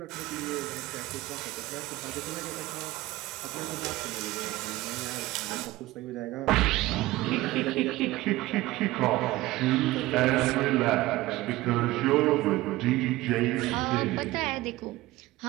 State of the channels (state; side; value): quieter; left; 18.1 dB